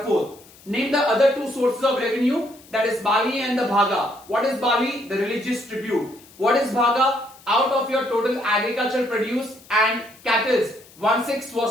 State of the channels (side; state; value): left; noise; hiss, 24 dB below the sound